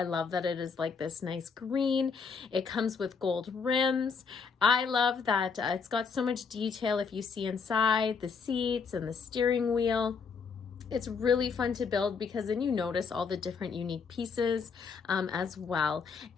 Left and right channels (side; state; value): right; quieter; 5.5 dB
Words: love that it is like this nice green. It comes with gold rims. I love that it's got so much detail if you see inside the seats and the steering wheel. It's really fun to build because then you notice all the different unique pieces as well.